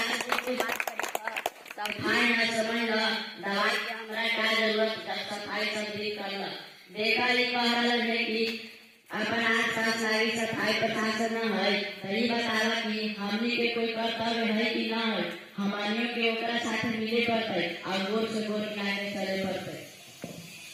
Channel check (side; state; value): both; identical; correlation 1.00